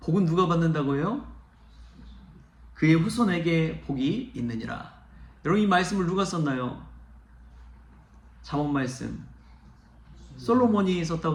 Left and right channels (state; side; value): identical; both; correlation 1.00